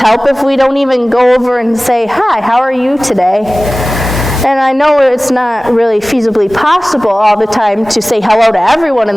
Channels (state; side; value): normal; both; correlation 0.98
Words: help if we don't even go over and say, hi, how are you today? And I know it's not really feasibly possible all the time to say hello to everyone